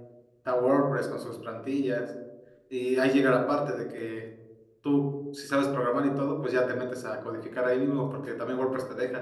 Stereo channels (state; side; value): identical; both; correlation 1.00